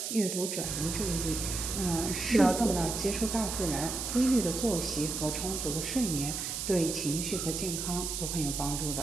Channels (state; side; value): noise; right; hiss, 3 dB below the sound